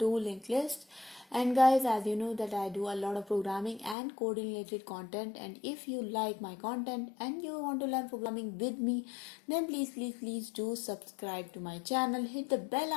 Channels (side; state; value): right; drops out; at 4.0 s